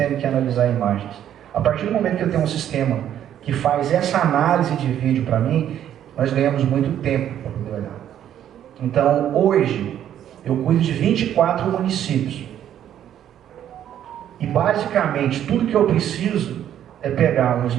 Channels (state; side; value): quieter; left; 10.6 dB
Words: que analisar imagens. A partir do momento que eu tenho um sistema que faz essa análise de vídeo para mim, nós ganhamos muito tempo para poder olhar. Então, hoje, eu cuido de 24 municípios. E basicamente tudo que eu preciso é pegar um